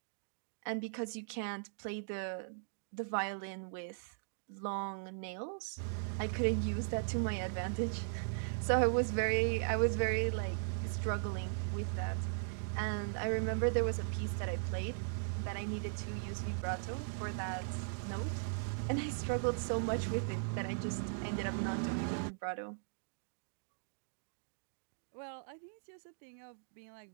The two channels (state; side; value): silent; left; digital silence